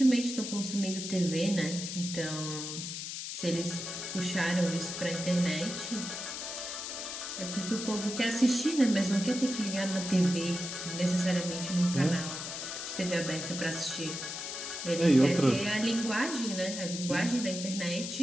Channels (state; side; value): noise; left; hiss, 6 dB below the sound